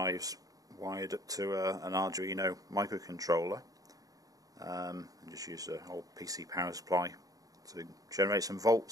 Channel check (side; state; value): left; late; 0.17 ms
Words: wired up to an Arduino microcontroller. And just use an old PC power supply to generate some